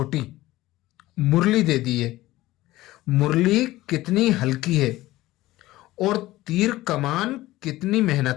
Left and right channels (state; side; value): quieter; right; 17.1 dB